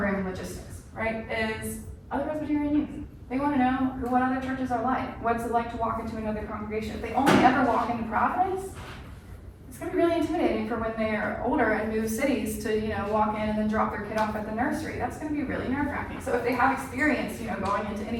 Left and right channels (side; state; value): both; identical; correlation 1.00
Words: logistics, right? Is other Presbyterian youth. They want to know what other churches are like. What's it like to walk into another congregation? If they only ever walk into Providence, it's going to be really intimidating for when they're older and move cities to, walk in and then drop their kid off at the nursery. That's going to be really nerve-wracking. So if they have experience, going into